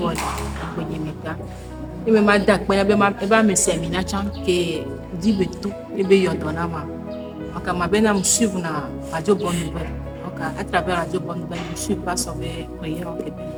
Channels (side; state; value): both; identical; correlation 1.00